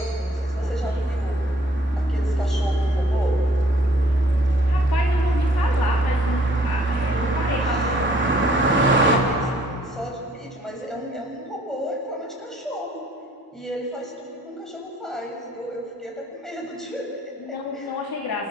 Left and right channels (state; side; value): normal; both; correlation 0.61